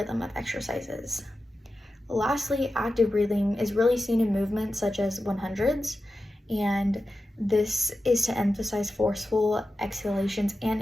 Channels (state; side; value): normal; both; correlation 0.92